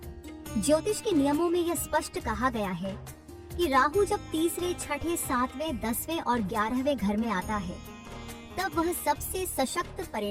ज्योतिष के नियमों में यह स्पष्ट कहा गया है कि राहु जब तीसरे, छठे, 7वें, 10वें और 11वें घर में आता है, तब वह सबसे सशक्त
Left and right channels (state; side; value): identical; both; correlation 1.00